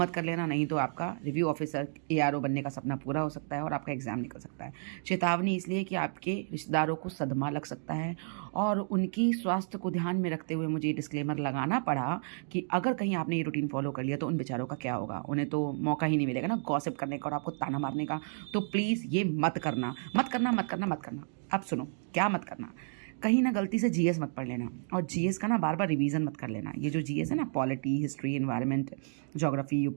कर लेना, नहीं तो आपका रिव्यू ऑफिसर एआरओ बनने का सपना पूरा हो सकता है और आपका एग्ज़ाम निकल सकता है। चेतावनी इसलिए कि आपके रिश्तेदारों को सदमा लग सकता है और उनकी स्वास्थ्य को ध्यान में रखते हुए मुझे डिस्क्लेमर लगाना पड़ा कि अगर कहीं आपने ये रूटीन फॉलो कर लिया तो उन बेचारों का क्या होगा। उन्हें तो मौका ही नहीं मिलेगा ना गॉसिप करने का और आपको ताना मारने का। तो प्लीज़ ये मत करना, मत करना, मत करना, मत करना। अब सुनो, क्या मत करना। कहीं ना गलती से जीएस मत पढ़ लेना और जीएस का ना बार बार रिवीजन मत कर लेना। ये जो जीएस है ना, polity, history, environment, geography,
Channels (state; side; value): silent; left; digital silence